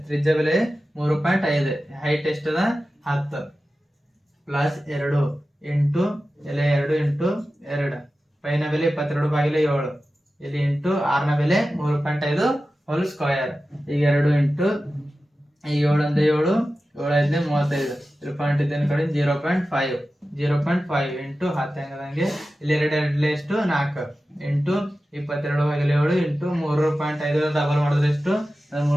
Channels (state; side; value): normal; both; correlation 0.94